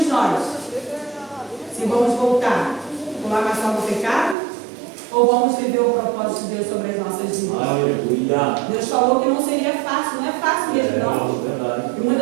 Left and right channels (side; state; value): left; drops out; at 4.4 s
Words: nós se vamos voltar por lavação do pecado ou vamos viver o propósito de Deus sobre as nossas vidas. Aleluia. Deus falou que não seria fácil, não é fácil mesmo não. Verdade. E